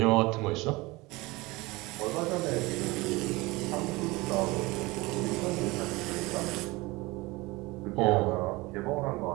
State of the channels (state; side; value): quieter; left; 22.4 dB